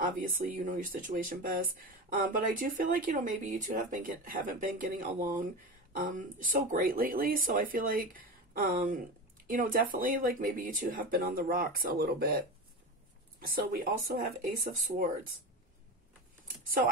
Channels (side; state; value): both; normal; correlation 0.25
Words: you know your situation best, but I do feel like, you know, maybe you two haven't been getting along so great lately. So I feel like, you know, definitely like maybe you two have been on the rocks a little bit. So we also have Ace of Swords. So